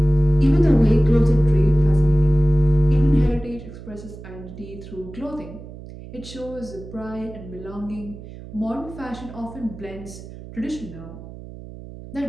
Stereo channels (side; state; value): right; noise; hum, 15 dB below the sound